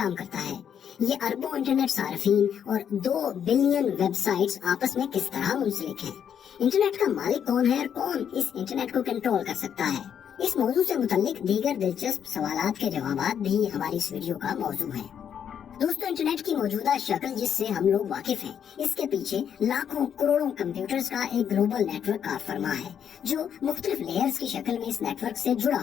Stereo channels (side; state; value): right; quieter; 8.5 dB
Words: करता है? ये अरबों इंटरनेट सार्फिन और 2 बिलियन वेबसाइट्स आपस में किस तरह मुंसलिक हैं? इंटरनेट का मालिक कौन है और कौन इस इंटरनेट को कंट्रोल कर सकता है? इस मौजू से मुतल्लिक दीगर दिलचस्प सवालात के जवाबात भी हमारी इस वीडियो का मौजू है। दोस्तों, इंटरनेट की मौजूदा शक्ल जिससे हम लोग वाकिफ हैं, इसके पीछे लाखों करोड़ों कंप्यूटर्स का एक ग्लोबल नेटवर्क कार फरमा है जो मुख्तलिफ लेयर्स की शक्ल में इस नेटवर्क से जुड़ा